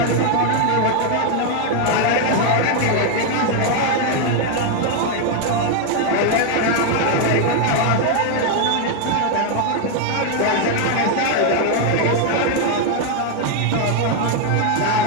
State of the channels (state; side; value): different; both; correlation 0.00